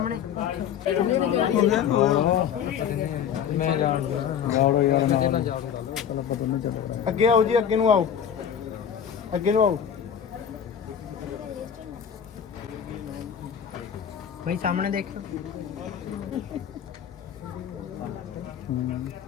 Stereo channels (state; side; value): quieter; right; 8.4 dB